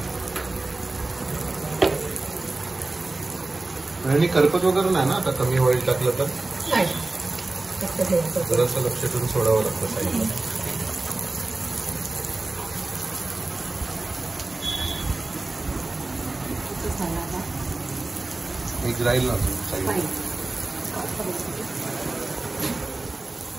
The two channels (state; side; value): quieter; left; 3.2 dB